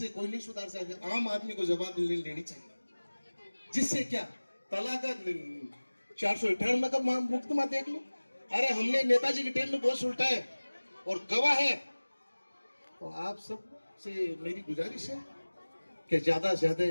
कोई नहीं सुधार सकता, आम आदमी को जवाब लेनी चाहिए। जिससे क्या तलाक 498 का मुकदमा देख लो। अरे हमने नेताजी के टाइम में बहुत उल्टा है और गवाह है। तो आप सब से मेरी गुजारिश है कि ज्यादा से ज्यादा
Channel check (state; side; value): inverted; both; correlation -1.00